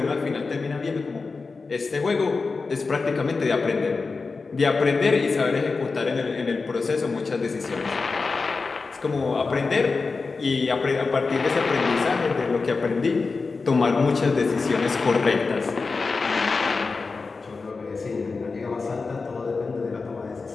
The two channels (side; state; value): right; quieter; 4.3 dB